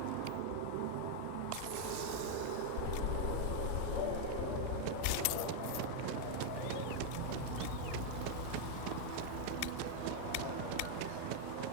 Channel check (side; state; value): both; different; correlation 0.00